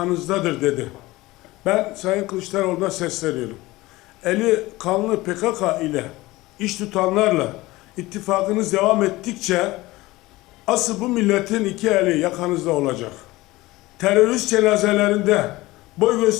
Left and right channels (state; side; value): quieter; right; 19.5 dB